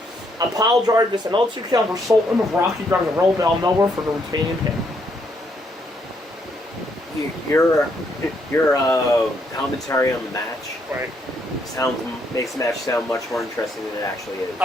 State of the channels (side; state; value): both; normal; correlation 0.73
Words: A pile drive gets another 2 count for Sultan, with Rocky drives a roll down nowhere for the retaining pin. Your commentary on the match Right. makes the match sound much more interesting than it actually is.